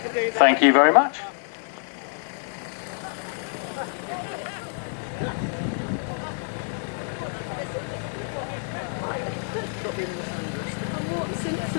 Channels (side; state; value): right; silent; digital silence